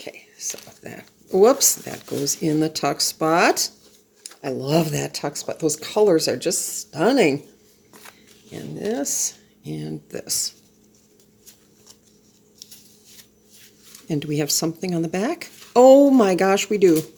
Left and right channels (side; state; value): both; identical; correlation 1.00